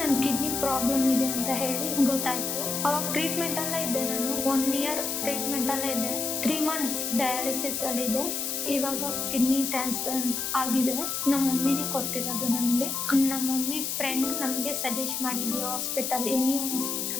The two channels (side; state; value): left; noise; hiss, 2 dB below the sound